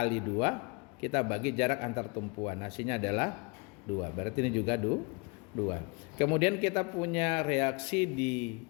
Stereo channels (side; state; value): right; quieter; 30.9 dB